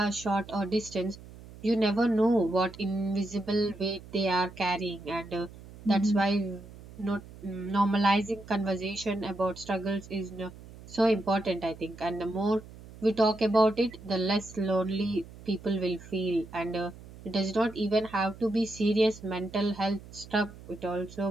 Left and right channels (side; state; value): right; noise; hum, 18 dB below the sound